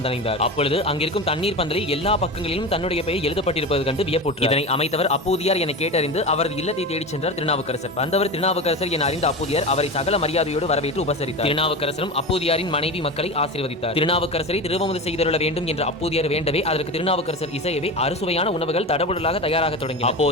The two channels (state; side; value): normal; both; correlation 0.26